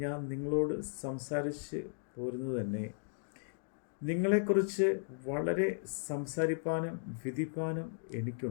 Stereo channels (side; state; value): right; silent; digital silence